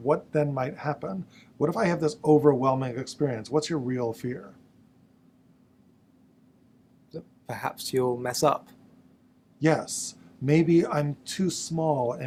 then might happen? What if I have this overwhelming experience? What's your real fear? Perhaps you'll mess up. Yes. Maybe I'm too small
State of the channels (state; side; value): identical; both; correlation 1.00